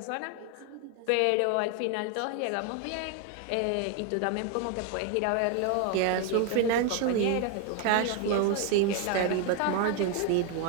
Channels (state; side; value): different; both; correlation 0.01